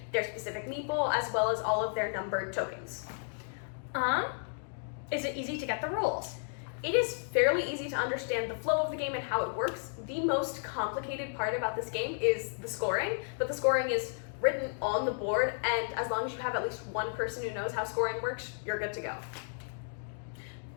their specific meeple, as well as all of their numbered tokens. Is it easy to get the rules? It is fairly easy to understand the flow of the game and how it works. The most complicated part about this game is the scoring, but the scoring is written on the board, and as long as you have at least one person who knows how scoring works, you're good to go.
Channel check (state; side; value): silent; right; digital silence